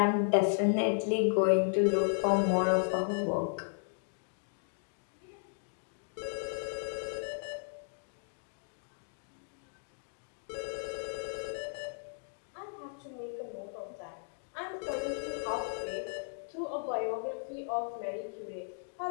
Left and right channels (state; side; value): silent; right; digital silence